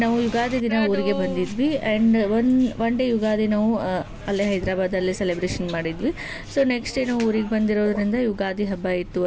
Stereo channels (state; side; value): identical; both; correlation 1.00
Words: ನಾವು ಯುಗಾದಿ ದಿನ ಊರಿಗೆ ಬಂದಿದ್ವಿ. ಆ್ಯಂಡ್ ಒನ್ ಡೇ ಯುಗಾದಿ ನಾವು ಅಲ್ಲೇ ಹೈದರಾಬಾದಲ್ಲೇ ಸೆಲೆಬ್ರೇಷನ್ ಮಾಡಿದ್ವಿ. ಸೊ ನೆಕ್ಸ್ಟ್ ಡೇ ನಾವು ಊರಿಗೆ ಬಂದಿರೋದ್ರಿಂದ ಯುಗಾದಿ ಹಬ್ಬ ಇತ್ತು